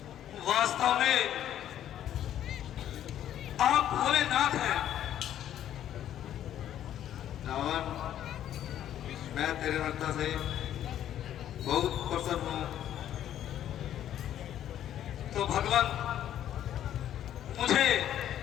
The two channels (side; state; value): right; quieter; 11.1 dB